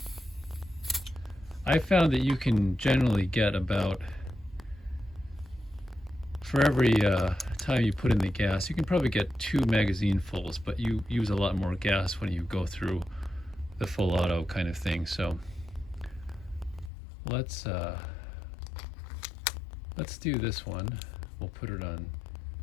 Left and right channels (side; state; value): right; drops out; at 16.9 s